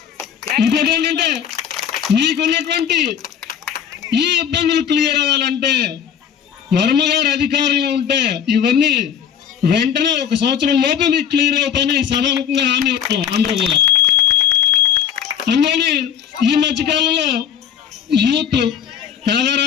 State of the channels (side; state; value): right; quieter; 8.5 dB